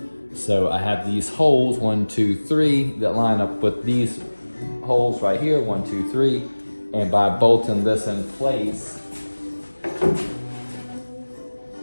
So I have these holes, 1, 2, 3, that line up with these holes right here, 1, 2, 3. And by bolting this in place,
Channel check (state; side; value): inverted; both; correlation -1.00